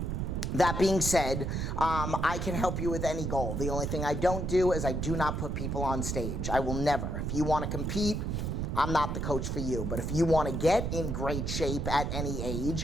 that being said, I can help you with any goal. The only thing I don't do is I do not put people on stage. I will never. If you want to compete, I'm not the coach for you. But if you want to get in great shape at any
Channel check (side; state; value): right; noise; rumble, 2 dB below the sound